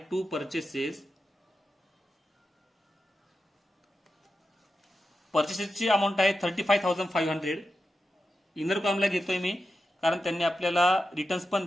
टू परचेसेस. परचेसेसची अमाऊंट आहे 35,500. इनर कॉलमला घेतोय मी कारण त्यांनी आपल्याला रिटर्न्स पण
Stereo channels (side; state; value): both; normal; correlation 0.90